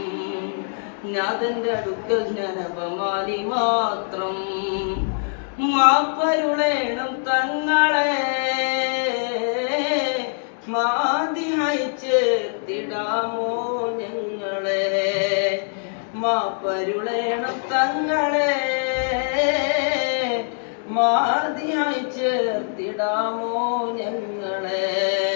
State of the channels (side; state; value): right; silent; digital silence